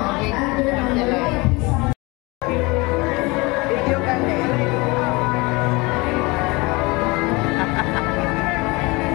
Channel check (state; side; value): quieter; right; 25.0 dB